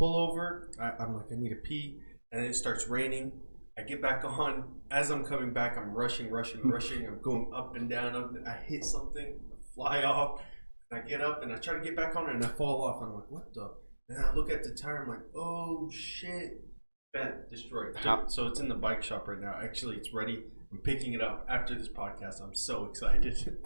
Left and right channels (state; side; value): inverted; both; correlation -1.00